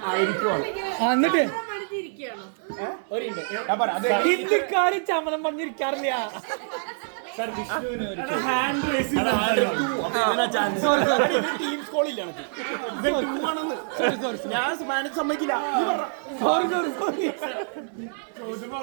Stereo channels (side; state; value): left; silent; digital silence